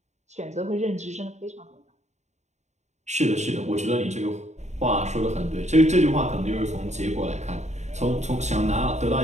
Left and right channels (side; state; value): left; late; 0.33 ms